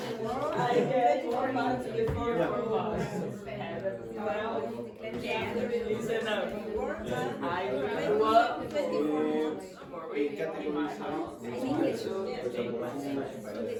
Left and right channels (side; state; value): both; identical; correlation 1.00